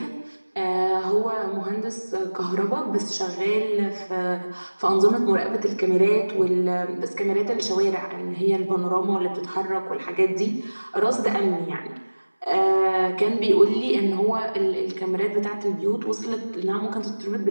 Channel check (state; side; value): inverted; both; correlation -1.00